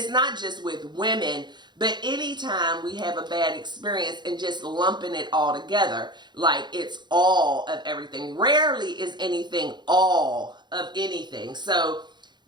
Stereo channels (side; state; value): left; late; 0.21 ms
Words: not just with women, but anytime we have a bad experience and just lumping it all together, like it's all of everything. Rarely is anything all of anything. So